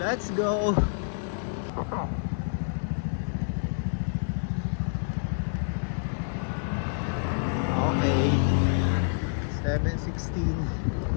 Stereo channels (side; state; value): right; silent; digital silence